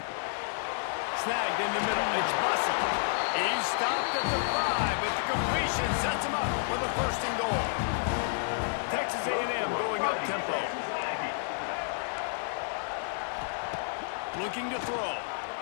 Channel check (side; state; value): right; silent; digital silence